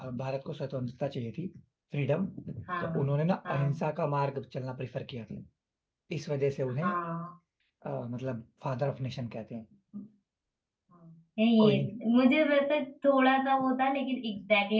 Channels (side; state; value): both; identical; correlation 1.00